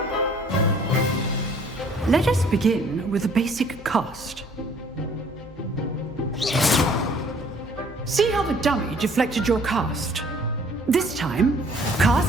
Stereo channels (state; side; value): normal; both; correlation 0.57